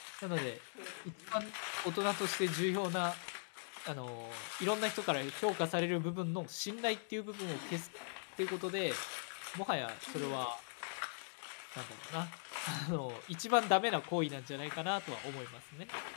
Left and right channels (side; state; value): right; silent; digital silence